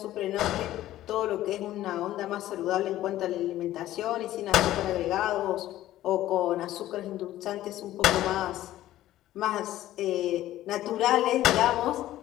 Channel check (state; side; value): quieter; right; 14.2 dB